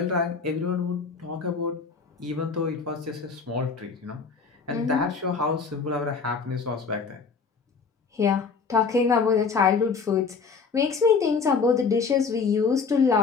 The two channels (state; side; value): quieter; right; 5.1 dB